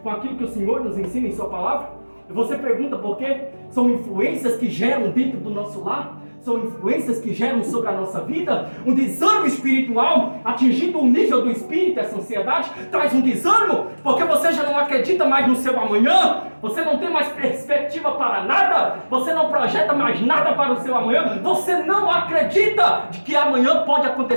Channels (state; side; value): inverted; both; correlation -1.00